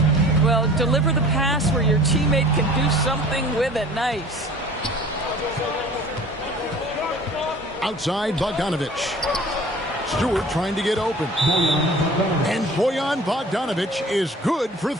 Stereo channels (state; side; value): normal; both; correlation 0.46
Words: Well, deliver the pass where your teammate can do something with it. Nice. Outside, Bogdanovich. Stewart trying to get open. And Bojan Bogdanovich is good for